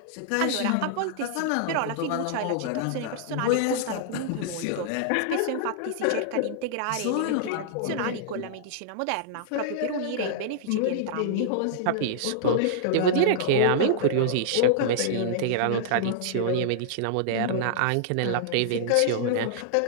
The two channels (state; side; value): different; both; correlation -0.01